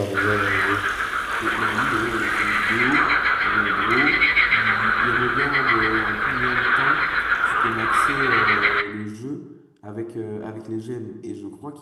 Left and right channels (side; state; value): both; identical; correlation 1.00